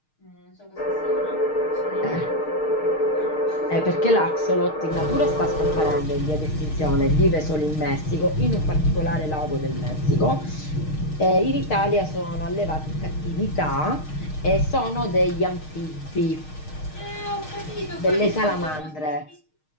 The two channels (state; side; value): late; right; 6.5 ms